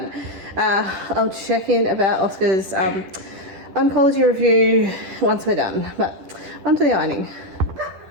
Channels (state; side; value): late; left; 10 ms